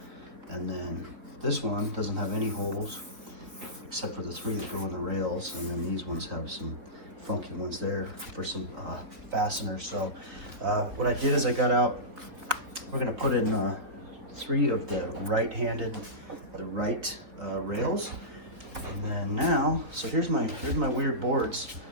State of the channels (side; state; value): left; late; 3.7 ms